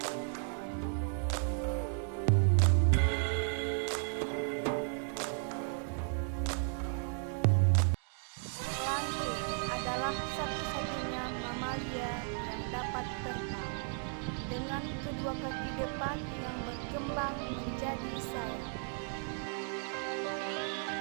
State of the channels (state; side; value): silent; left; 54 dB below the other